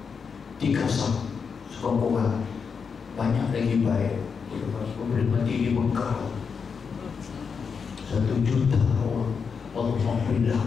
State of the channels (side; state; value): right; quieter; 5.9 dB